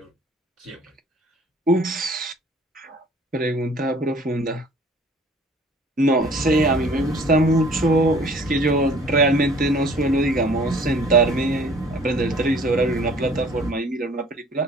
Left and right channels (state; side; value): normal; both; correlation 0.53